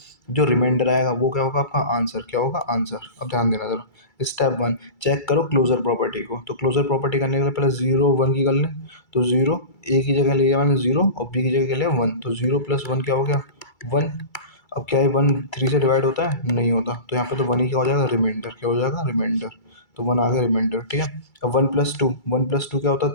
जो रिमाइंडर आएगा वो क्या होगा आपका आंसर, क्या होगा आंसर। अब ध्यान देना जरा, स्टेप 1, चेक करो क्लोजर प्रॉपर्टी को। तो क्लोजर प्रॉपर्टी करने के लिए पहले 0 1 की कर लें। तो 0 ए की जगह लिया मैंने 0 और बी की जगह लिया 1, तो 0 + 1 क्या हो गया 1। अब क्या है 1 3 से डिवाइड होता है, नहीं होता, तो यहाँ पे तो 1 ही क्या हो जाएगा, रिमाइंडर, क्या हो जाएगा रिमाइंडर। तो 1 आ गया रिमाइंडर। ठीक है। अब 1 + 2, 1 + 2 क्या होता है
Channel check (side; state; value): right; late; 2.3 ms